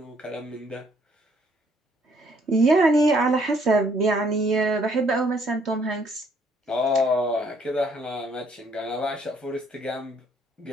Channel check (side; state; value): both; normal; correlation 0.66